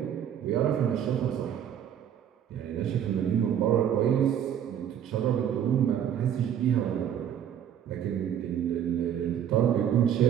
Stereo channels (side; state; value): left; quieter; 9.5 dB